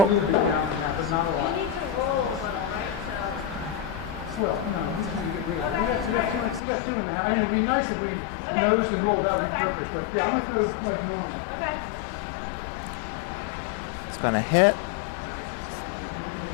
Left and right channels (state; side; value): drops out; right; at 6.6 s